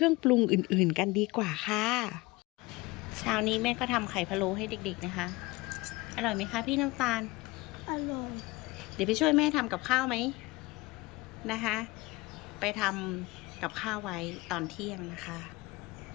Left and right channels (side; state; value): right; quieter; 22.1 dB